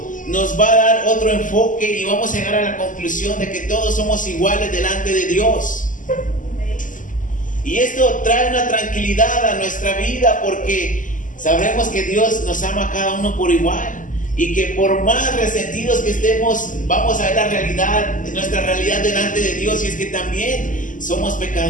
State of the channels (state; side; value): late; right; 0.38 ms